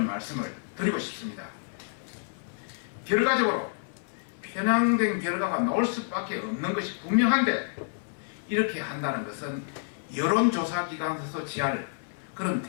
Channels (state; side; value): silent; right; 59 dB below the other